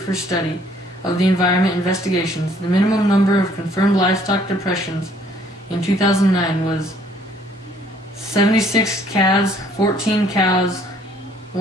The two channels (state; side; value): normal; both; correlation 0.62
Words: for Study of the Environment investigations, the minimum number of confirmed livestock depressions in 2009 was 76 calves, 14 cows,